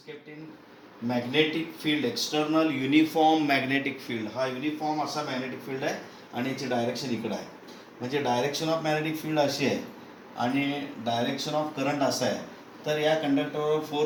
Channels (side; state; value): both; identical; correlation 1.00